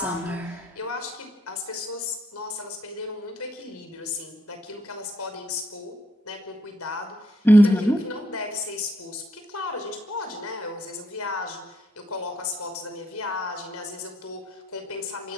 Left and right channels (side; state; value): both; normal; correlation 0.72